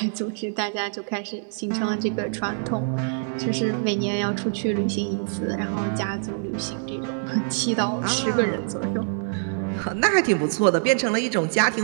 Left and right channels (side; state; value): left; silent; digital silence